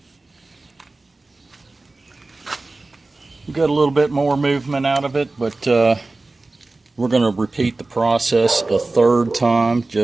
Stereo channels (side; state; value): left; quieter; 3.2 dB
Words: We got a little bit more movement out of it, but we're going to repeat the process a third time